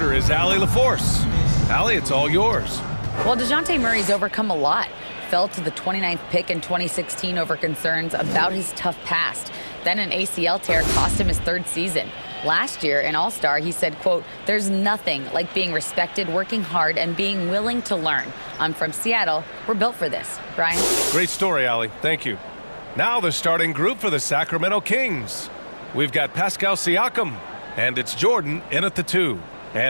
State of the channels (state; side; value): inverted; both; correlation -1.00